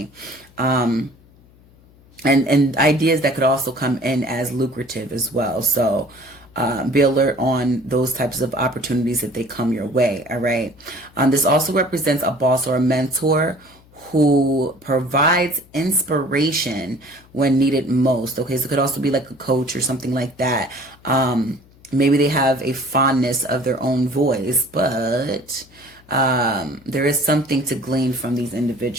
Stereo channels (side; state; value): left; noise; hum, 27 dB below the sound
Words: And ideas that could also come in as lucrative as well. So be alert on those types of opportunities if they come your way, all right? This also represents a boss or a mentor who provides inspiration when needed most, okay? So it could also be like a coach or something like that. Maybe they have a fondness of their own voice, but there is something to glean from these